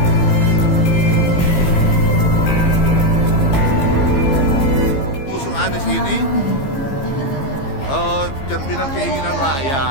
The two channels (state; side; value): late; right; 15 ms